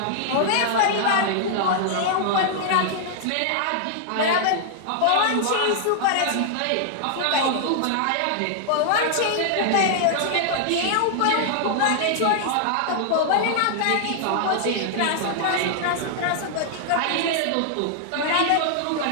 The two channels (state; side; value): different; both; correlation -0.01